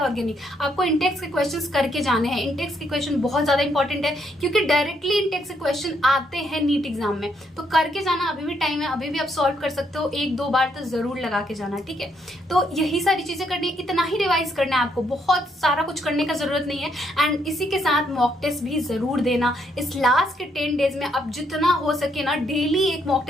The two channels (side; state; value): both; normal; correlation 0.74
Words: आपको इंटेक्स के क्वेश्चंस करके जाने हैं। इंटेक्स के क्वेश्चन बहुत ज्यादा इंपॉर्टेंट है क्योंकि डायरेक्टली इंटेक्स के क्वेश्चन आते हैं नीट एग्जाम में, तो करके जाना अभी अभी भी टाइम है, अभी भी आप सॉल्व कर सकते हो, 1-2 बार तो जरूर लगा के जाना, ठीक है। तो यही सारी चीजें करनी, इतना ही रिवाइज करना है आपको, बहुत सारा कुछ करने का जरूरत नहीं है। एंड इसी के साथ मॉक टेस्ट भी जरूर देना। इस लास्ट के 10 डेज में आप जितना हो सके ना डेली एक मॉक